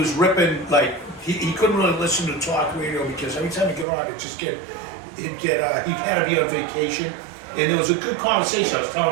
ripping like he couldn't really listen to talk radio because every time he get on, he had to be on vacation, and there was a good conversation. I was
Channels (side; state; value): left; drops out; at 3.9 s